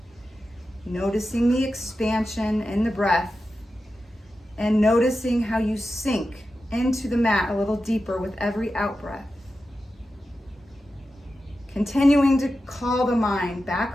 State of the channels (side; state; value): both; normal; correlation 0.91